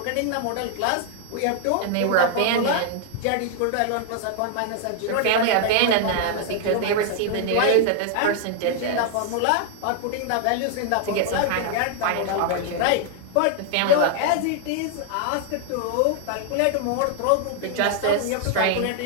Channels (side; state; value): both; different; correlation 0.00